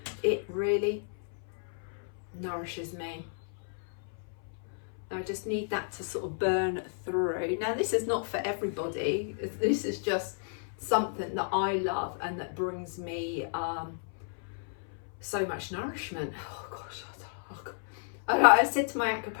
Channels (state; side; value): silent; right; 56 dB below the other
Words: It really nourishes me. I just need that to sort of burn through. Now, this is not for everybody. This is just something that I love and that brings me so much nourishment. Oh gosh, I said to my